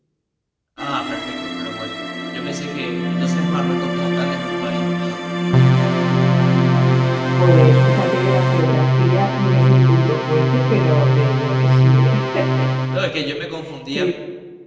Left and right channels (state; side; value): identical; both; correlation 1.00